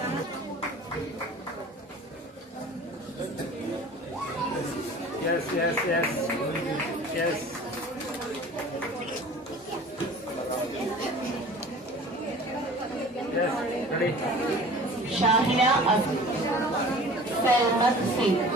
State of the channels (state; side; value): normal; both; correlation 0.43